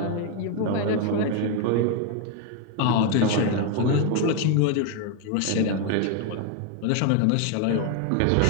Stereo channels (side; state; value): both; different; correlation 0.01